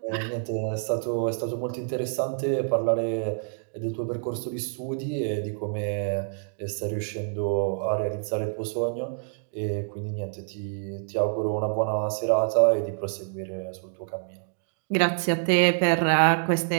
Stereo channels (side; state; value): left; silent; digital silence